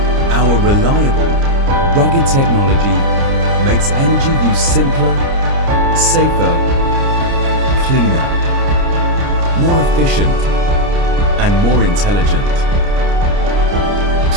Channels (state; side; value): late; left; 29 ms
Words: Our reliable, rugged technology makes energy use simpler, safer, cleaner, more efficient, and more intelligent.